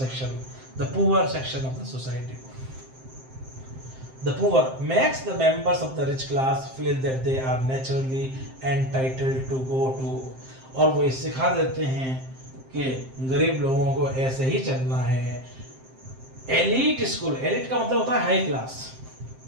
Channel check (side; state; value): left; late; 7.6 ms